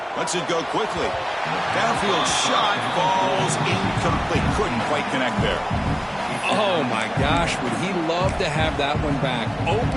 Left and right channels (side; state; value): both; identical; correlation 1.00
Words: Lets it go quickly. Downfield shot falls incomplete. Couldn't quite connect there. Oh, my gosh, would he love to have that one back.